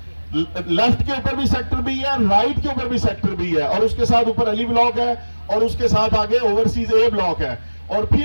लेफ्ट के ऊपर भी सेक्टर बी है, राइट के ऊपर भी सेक्टर बी है और उसके साथ ऊपर अली ब्लॉक है और उसके साथ आगे ओवरसीज ए ब्लॉक है और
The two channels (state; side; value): inverted; both; correlation -1.00